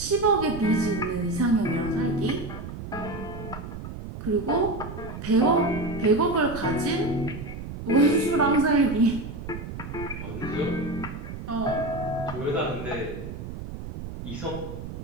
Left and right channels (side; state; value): right; noise; rumble, 9 dB below the sound